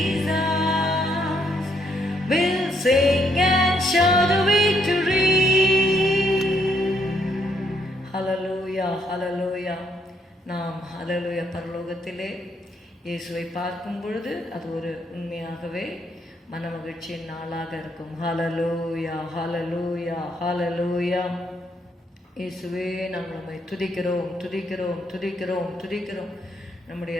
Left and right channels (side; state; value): both; normal; correlation 0.73